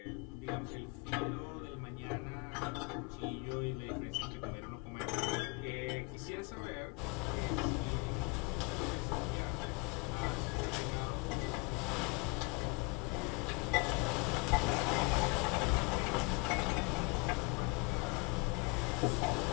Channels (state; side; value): quieter; right; 29.4 dB